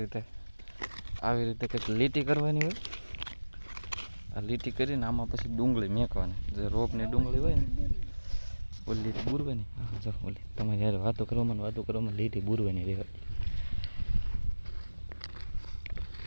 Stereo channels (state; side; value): inverted; both; correlation -1.00